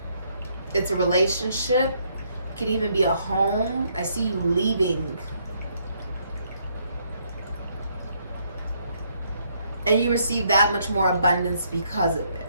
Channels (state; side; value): inverted; both; correlation -0.71